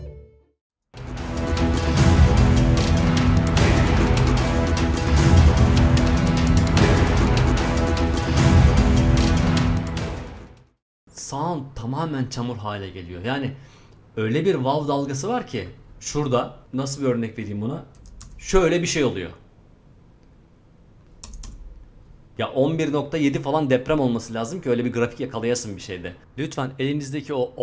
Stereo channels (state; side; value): identical; both; correlation 1.00